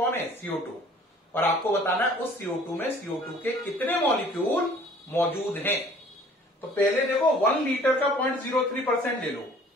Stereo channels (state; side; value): normal; both; correlation 0.52